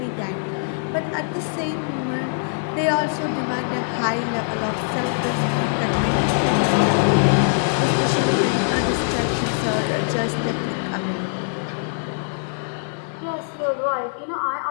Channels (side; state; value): right; silent; digital silence